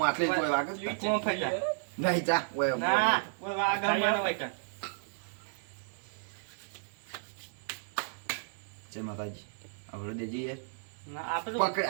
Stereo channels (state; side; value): silent; left; digital silence